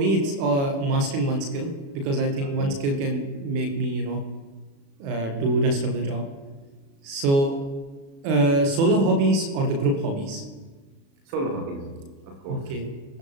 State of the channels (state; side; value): late; left; 36 ms